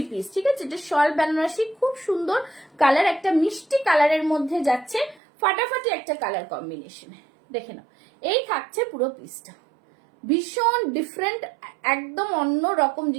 পিস, ঠিক আছে? এটা শল বেনারসি, খুব সুন্দর কালার, একটা মিষ্টি কালারের মধ্যে যাচ্ছে, ফাটাফাটি একটা কালার কম্বিনেশন, দেখে নাও। এই থাকছে পুরো পিসটা, ভীষণ ডিফারেন্ট, একদম অন্য রকম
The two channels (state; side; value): drops out; left; at 5.2 s